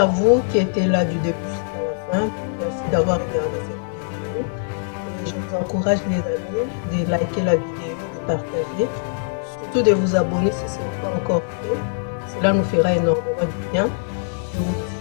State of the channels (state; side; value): silent; right; digital silence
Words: vous qui étiez là du début jusqu'à la fin. Merci d'avoir regardé cette vidéo. Et je vous encourage les amis de liker la vidéo, de partager, surtout de vous abonner si ce n'est pas encore fait. Cela nous fera énormément de bien. Je vous